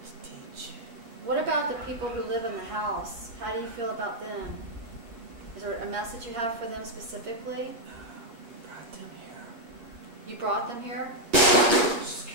teach. What about the people who live in the house? How do you feel about them? Is there a message you have for them specifically? We brought them here. You brought them here? Just give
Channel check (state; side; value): late; left; 8.5 ms